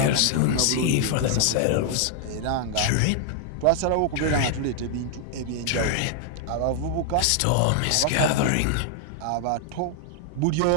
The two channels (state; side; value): different; both; correlation 0.00